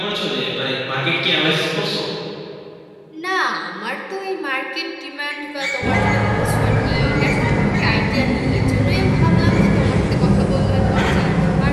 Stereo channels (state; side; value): identical; both; correlation 1.00